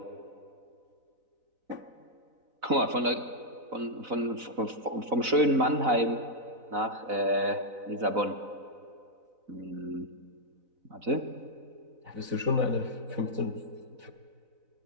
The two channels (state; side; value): late; left; 4.0 ms